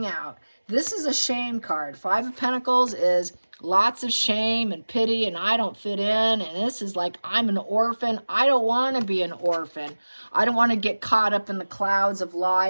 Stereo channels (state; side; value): inverted; both; correlation -1.00